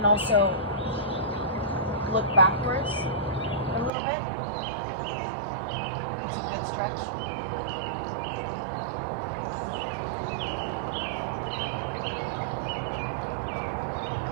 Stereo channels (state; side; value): drops out; left; at 3.9 s